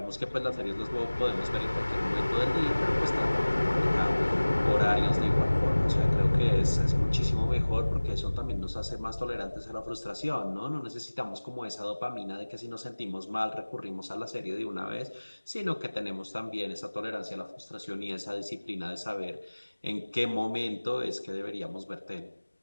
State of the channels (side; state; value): both; inverted; correlation -1.00